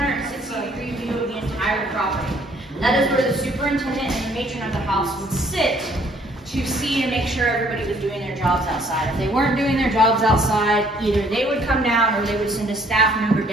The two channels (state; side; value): normal; both; correlation 0.62